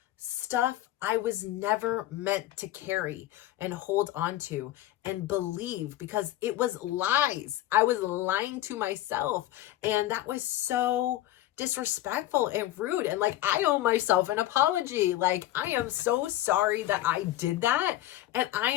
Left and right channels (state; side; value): quieter; right; 14.5 dB